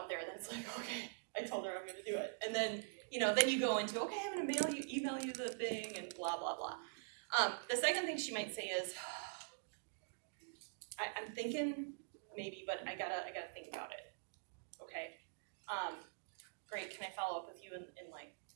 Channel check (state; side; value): silent; left; digital silence